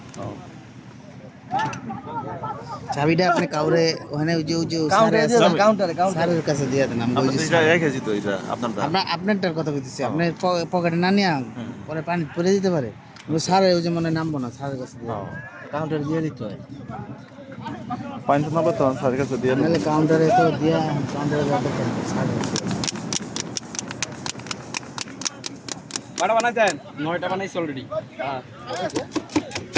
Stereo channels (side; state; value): both; identical; correlation 1.00